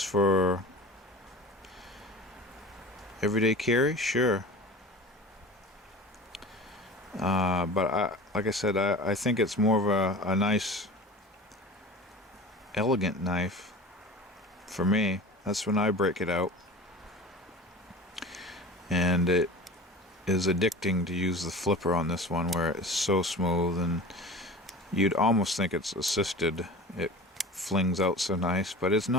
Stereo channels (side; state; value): both; normal; correlation 0.36